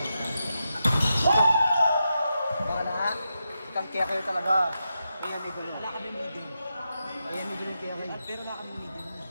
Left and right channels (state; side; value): inverted; both; correlation -0.87